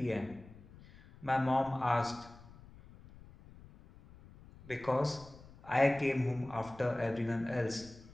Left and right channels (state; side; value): noise; left; rumble, 20 dB below the sound